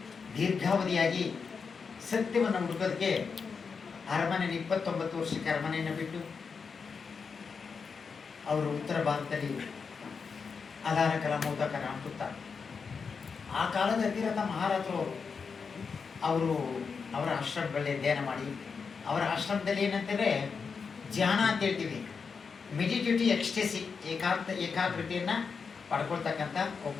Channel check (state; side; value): quieter; right; 5.5 dB